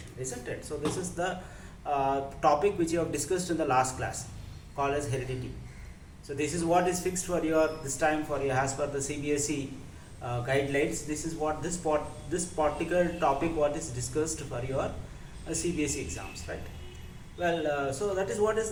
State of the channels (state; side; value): identical; both; correlation 1.00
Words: isn't it? So this is the topic which you have discussed in the last class, called as heredity. So this is what is fixed for your this time for your as per the CBSE guidelines. This is what this particular topic what is discussed for your CBSE exams, right? Well, so that is what is